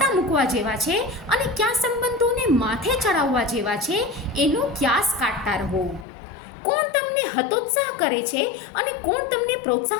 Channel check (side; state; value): right; drops out; at 6.1 s